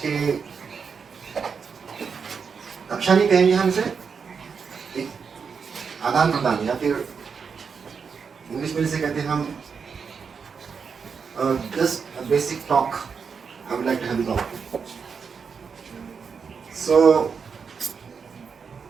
कक्षा नहीं कहेंगे, हम इसे एक आदान प्रदान या फिर इंग्लिश में इसे कहते हैं हम just basic talk. I would like to have a talk. So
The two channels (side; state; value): left; quieter; 5.9 dB